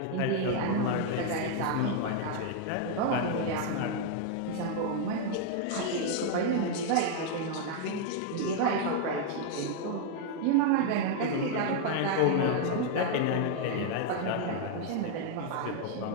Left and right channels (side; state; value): both; different; correlation 0.00